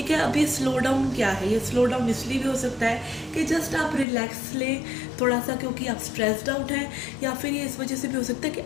है, अब ये स्लो डाउन क्या है? ये स्लो डाउन इसलिए भी हो सकता है कि जस्ट आप रिलैक्स लें थोड़ा सा, क्योंकि आप स्ट्रेस्ड आउट हैं, या फिर ये इस वजह से भी हो सकता है कि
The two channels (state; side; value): drops out; right; at 4.0 s